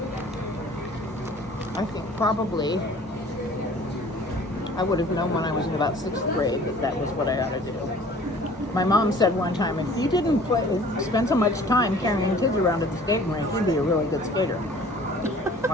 I think probably I would have known when I was in about 6th grade that was what I ought to do. My mom said one time, if you didn't spend so much time carrying kids around at the skating rink, you'd be a really good skater.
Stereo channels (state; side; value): normal; both; correlation 0.50